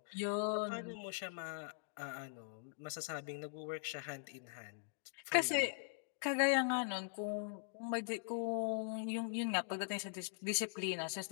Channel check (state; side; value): silent; right; digital silence